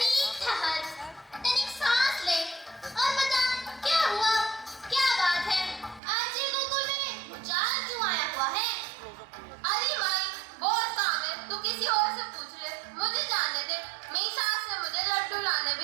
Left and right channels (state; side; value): drops out; left; at 6.0 s